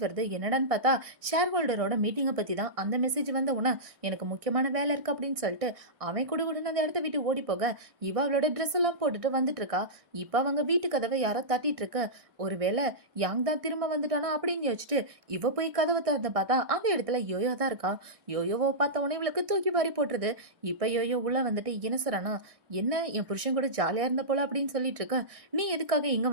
வருது. என்னடான்னு பார்த்தா ஷேர் ஹோல்டரோட மீட்டிங்கை பத்தி தான். அந்த மெசேஜ் வந்த உடனே எனக்கு முக்கியமான வேலை இருக்கு அப்படின்னு சொல்லிட்டு அவன் கூட அந்த இடத்த விட்டு ஓடி போக இவ அவளோட ட்ரெஸ் எல்லாம் போட்டுட்டு வந்துட்டு இருக்கா. இப்ப அவங்க வீட்டு கதவை யாரோ தட்டிட்டு இருக்க. ஒருவேளை யாங் தான் திரும்ப வந்துட்டானா அப்படின்னு யோசிச்சுட்டு இவ போய் கதவை திறந்து பார்த்தா அந்த இடத்துல யோயோ தான் இருக்கா. யோயோவை பார்த்த உடனே இவளுக்கு தூக்கி வாரி போட்டுருது. இப்ப யோயோ உள்ள வந்துட்டு என்ன சொல்றானா, என்ன என் புருஷன் கூட ஜாலியா இருந்த போல அப்படின்னு சொல்லிட்டு இருக்க. நீ எதுக்காக இங்க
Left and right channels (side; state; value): left; late; 1.6 ms